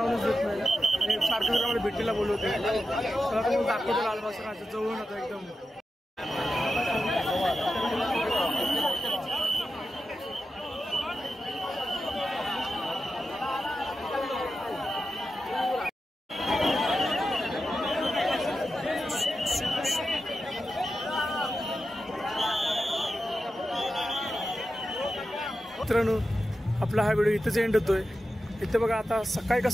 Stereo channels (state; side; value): normal; both; correlation 0.91